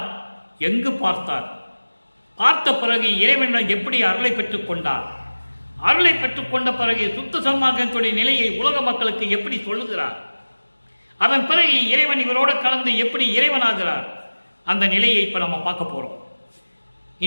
எங்கு பார்த்தார், பார்த்த பிறகு இறைவனிடம் எப்படி அருளை பெற்றுக் கொண்டார், அருளை பெற்றுக்கொண்ட பிறகு சுத்த சன்மார்க்கத்துடைய நிலையை உலக மக்களுக்கு எப்படி சொல்லுகிறார், அதன் பிறகு இறைவன் இவரோடு கலந்து எப்படி இறைவனாகிறார், அந்த நிலையை இப்போ நம்ம பார்க்க போகிறோம்.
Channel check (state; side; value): inverted; both; correlation -1.00